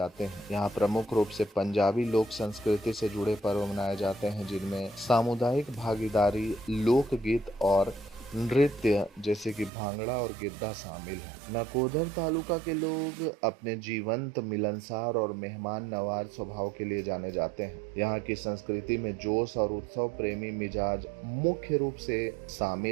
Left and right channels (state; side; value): drops out; left; at 9.7 s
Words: हैं। यहाँ प्रमुख रूप से पंजाबी लोक संस्कृति से जुड़े पर्व मनाए जाते हैं, जिनमें सामुदायिक भागीदारी, लोकगीत और नृत्य जैसे कि भांगड़ा और गिद्धा शामिल है। नकोदर तालुका के लोग अपने जीवंत, मिलनसार और मेहमान नवाज स्वभाव के लिए जाने जाते हैं। यहाँ की संस्कृति में जोश और उत्सव प्रेमी मिजाज मुख्य रूप से